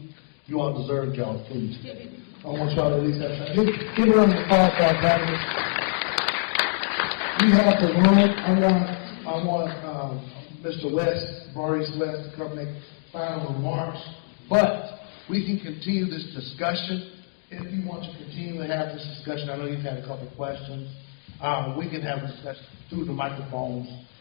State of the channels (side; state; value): right; silent; digital silence